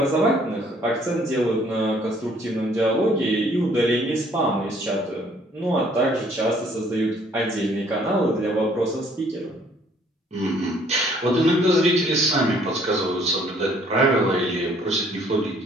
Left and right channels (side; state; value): both; normal; correlation 0.61